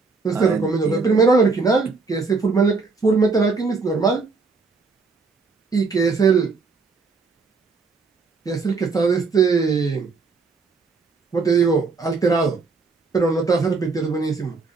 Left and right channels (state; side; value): quieter; left; 4.3 dB